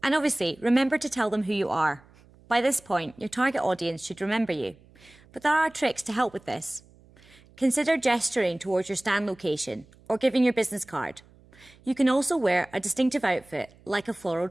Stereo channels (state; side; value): noise; right; hum, 27 dB below the sound